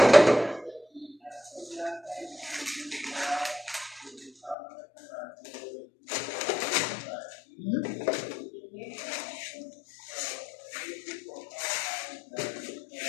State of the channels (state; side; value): drops out; right; at 4.5 s